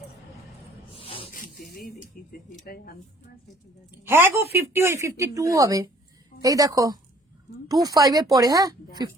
হ্যাঁ গো 50 হয়ে 52 হবে, এই দেখো 25 এর পরে, হ্যাঁ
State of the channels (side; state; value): both; normal; correlation 0.56